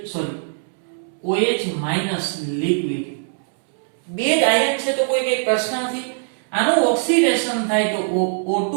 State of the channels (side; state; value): left; silent; 65 dB below the other